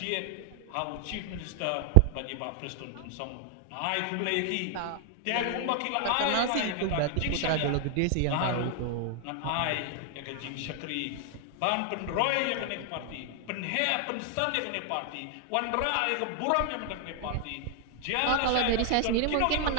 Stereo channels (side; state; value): both; different; correlation 0.00